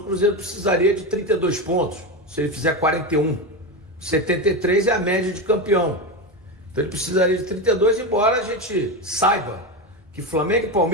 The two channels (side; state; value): both; normal; correlation 0.16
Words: Cruzeiro precisaria de 32 pontos. Se ele fizer 41, 73 é a média de campeão. Então ele precisaria de 32, embora a gente saiba que Flamengo,